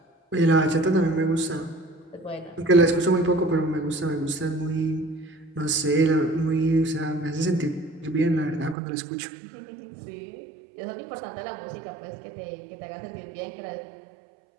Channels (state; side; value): drops out; left; at 8.8 s